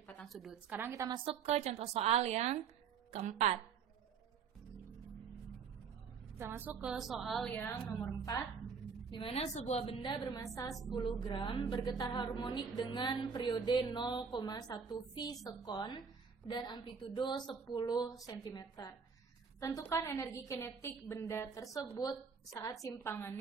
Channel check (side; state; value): left; quieter; 6.1 dB